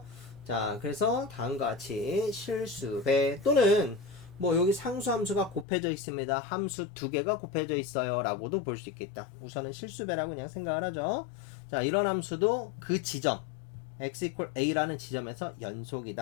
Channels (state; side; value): drops out; right; at 5.7 s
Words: 자, 그래서 다음과 같이 실수배 또는 뭐 여기 상수함수가 곱해져 있습니다. 함수 두 개가 곱해져 있어요 라고도 볼 수 있겠다. 우선은 실수배라고 그냥 생각을 하죠. 자, 이런 함수도 그 지점 x equal a라는 지점에서